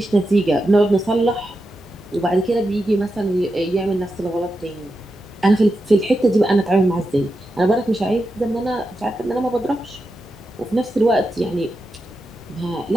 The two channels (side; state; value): both; normal; correlation 0.88